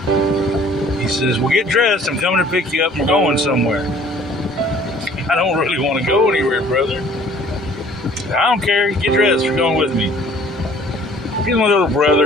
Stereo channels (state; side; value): normal; both; correlation 0.54